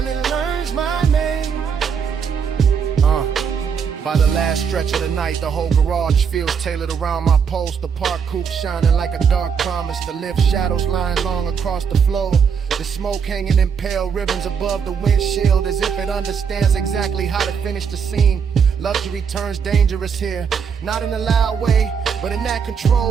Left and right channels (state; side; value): quieter; left; 6.7 dB